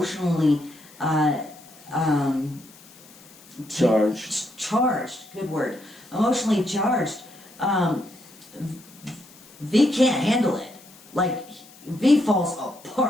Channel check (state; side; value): noise; left; hiss, 23 dB below the sound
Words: charged, good word, emotionally charged, V can't handle it. Like, V falls